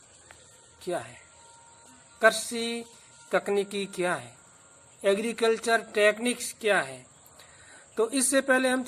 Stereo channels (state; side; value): identical; both; correlation 1.00